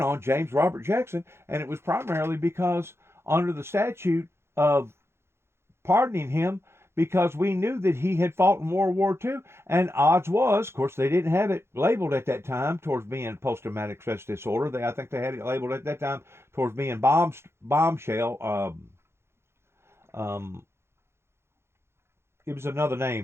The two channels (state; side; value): late; left; 0.12 ms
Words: on James Robert Jackson, and it was primarily because under the statute of pardoning him, because we knew that he had fought in World War II, and odds was, of course, they didn't have it labeled at that time towards being post-traumatic stress disorder. I think they had it labeled at that time towards being bombshell. It was another